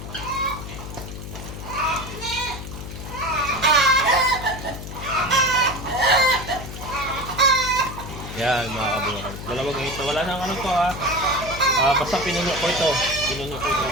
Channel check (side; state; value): left; noise; hum, 10 dB below the sound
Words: Yan mga kabokals. 2 ganito. Wala nang ano to ha. Basta pinuno ko ito. Ano.